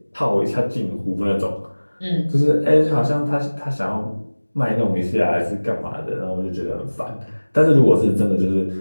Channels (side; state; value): both; inverted; correlation -1.00